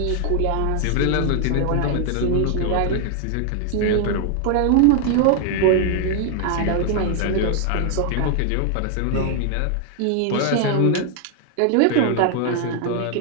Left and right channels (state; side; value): different; both; correlation 0.00